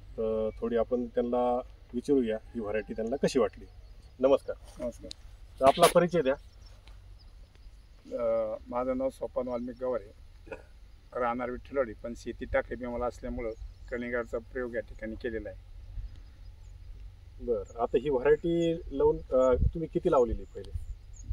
तर थोडी आपण त्यांना विचारूया ही व्हरायटी त्यांना कशी वाटली. नमस्कार. नमस्कार. तर आपला परिचय द्या. माझं नाव सोपान वाल्मिक गवारे, राहणार विठ्ठलवाडी, पण शेती टाकली मला असल्यामुळं कलिंगडचा प्रयोग या ठिकाणी केलेला आहे. बरं, आता ही व्हरायटी लावून तुम्ही किती लावलेली पहिले?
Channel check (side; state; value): both; identical; correlation 1.00